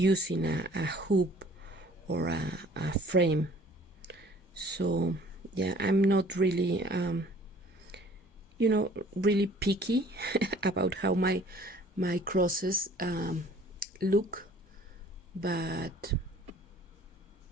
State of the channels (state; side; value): normal; both; correlation 0.53